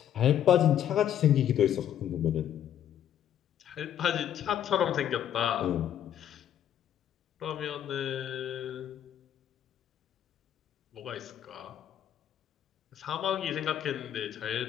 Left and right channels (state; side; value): quieter; right; 10.3 dB